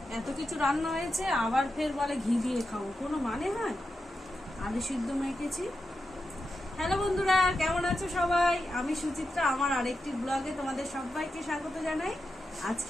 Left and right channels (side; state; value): both; normal; correlation 0.89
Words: এত কিছু রান্না হয়েছে আবার ফের বলে ঘি দিয়ে খাবো, কোনো মানে হয়? আলু সিদ্ধ মেখেছি। হ্যালো বন্ধুরা, কেমন আছো সবাই? আমি সুচিত্রা, আমার আরেকটি ব্লগে তোমাদের সবাইকে স্বাগত জানাই।